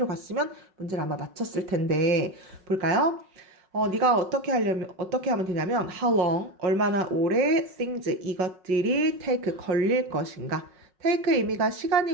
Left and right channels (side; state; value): left; late; 5.4 ms